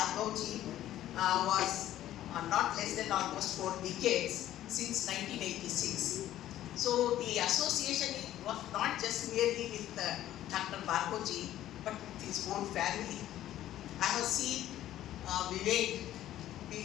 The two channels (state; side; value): quieter; right; 13.0 dB